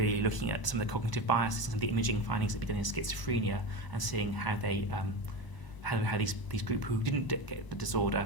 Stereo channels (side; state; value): right; late; 1.0 ms